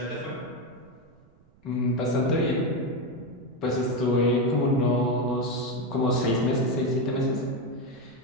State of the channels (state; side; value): noise; right; rumble, 29 dB below the sound